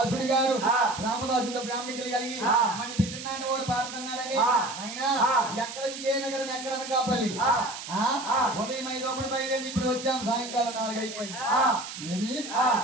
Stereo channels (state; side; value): noise; right; hiss, 10 dB below the sound